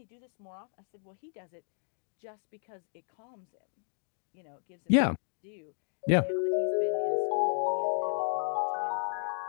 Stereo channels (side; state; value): right; silent; digital silence